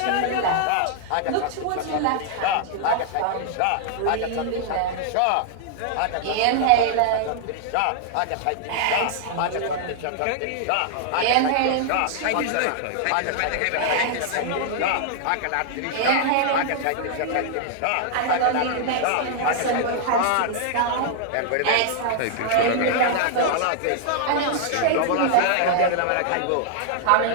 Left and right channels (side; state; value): both; different; correlation -0.01